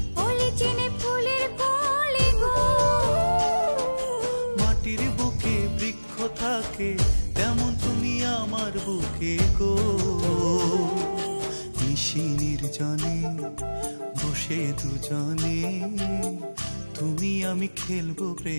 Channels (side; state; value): both; inverted; correlation -1.00